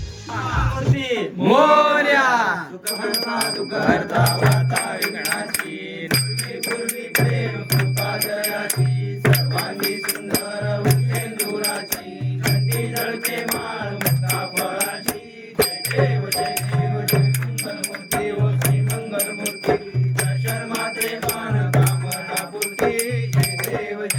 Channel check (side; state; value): both; identical; correlation 1.00